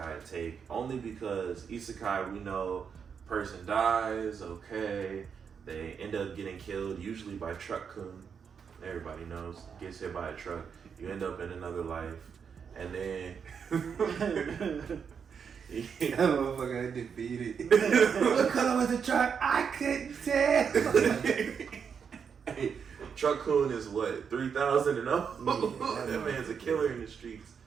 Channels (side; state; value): left; quieter; 6.7 dB